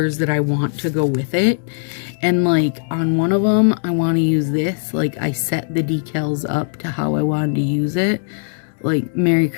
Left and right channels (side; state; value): right; silent; digital silence